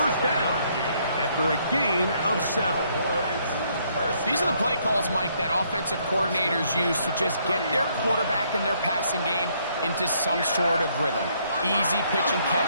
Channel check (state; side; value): inverted; both; correlation -0.69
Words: down after a gain of 7. These are the play calls, Mike, that offensive coordinators use to just get their quarterback and their passing game into some sort of rhythm. Easy pitch and